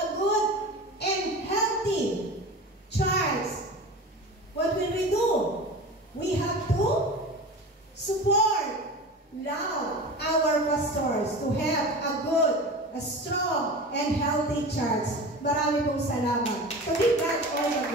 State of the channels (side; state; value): both; normal; correlation 0.32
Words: pastors to have a good, a strong, and healthy church. Marami pong salamat. To be God all the